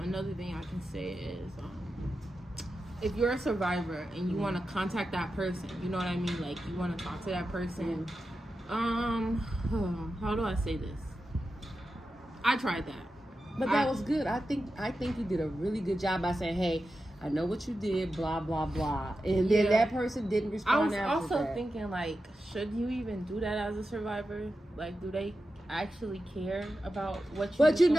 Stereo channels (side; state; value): both; normal; correlation 0.91